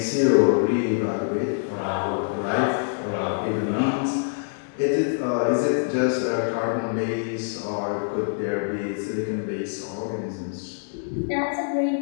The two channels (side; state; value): right; silent; digital silence